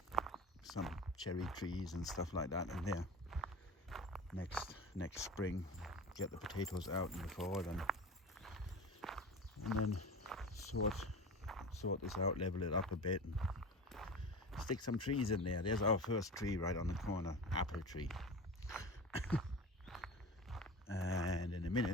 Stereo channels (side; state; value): both; normal; correlation 0.33